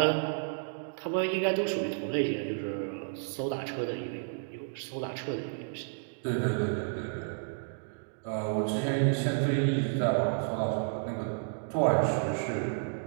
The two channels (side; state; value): left; silent; digital silence